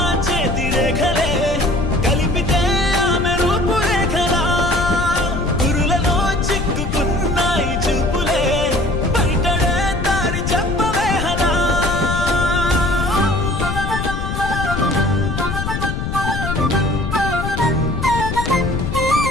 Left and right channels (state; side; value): noise; left; rumble, 4 dB below the sound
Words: చేతి రేఖలే కలిపితే ఆమె రూపురేఖలా గురులలో చిక్కుకున్నాయి చూపులే బయటడే దారి చెప్పవేహలా